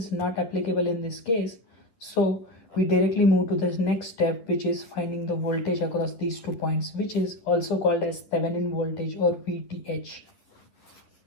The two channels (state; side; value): late; right; 11 ms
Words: not applicable in this case. So we directly move to this next step, which is finding the voltage across these 2 points, which is also called as Thevenin voltage or VTH.